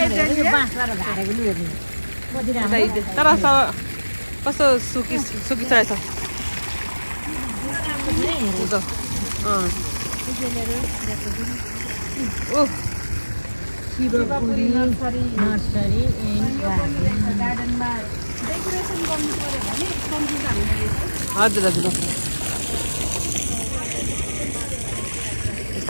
यो बाँसबाट झारेको लियो तर कस्तो सुकी रहेछ। शिवपुरी नर्सरी एन्ड गार्डनमा डेकोरेसन गर्नु पर्यो भने कम्ती दाममा हजुर हजुर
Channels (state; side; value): inverted; both; correlation -1.00